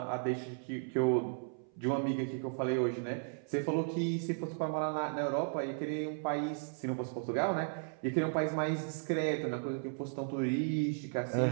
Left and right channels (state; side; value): silent; left; 54 dB below the other